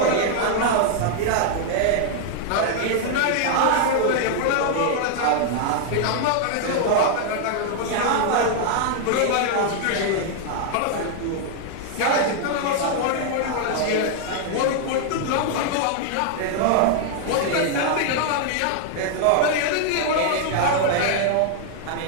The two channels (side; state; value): both; different; correlation 0.00